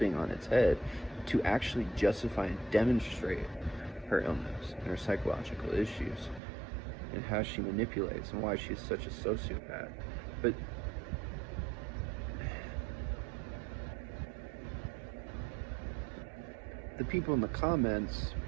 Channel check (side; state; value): left; drops out; at 6.4 s